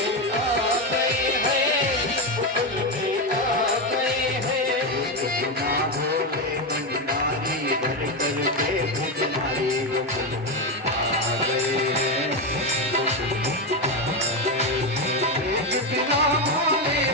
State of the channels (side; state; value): both; normal; correlation 0.11